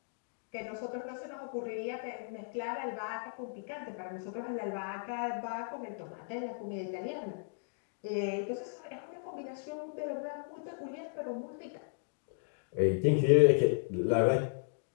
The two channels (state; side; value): silent; right; digital silence